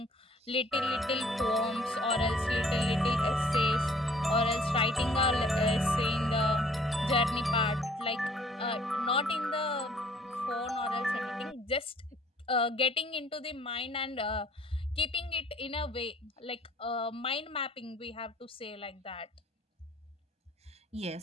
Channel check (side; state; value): both; normal; correlation 0.58